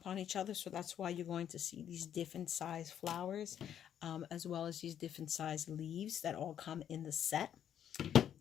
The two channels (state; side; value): quieter; right; 9.7 dB